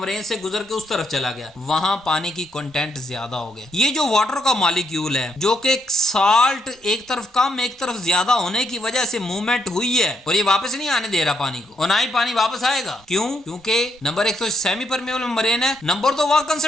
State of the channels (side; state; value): both; normal; correlation 0.76